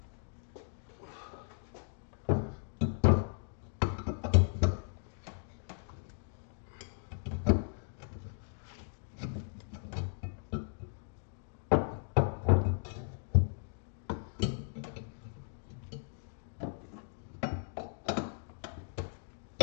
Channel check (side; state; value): right; silent; 54 dB below the other